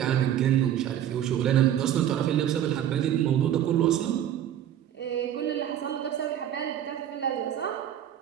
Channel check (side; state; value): left; quieter; 10.7 dB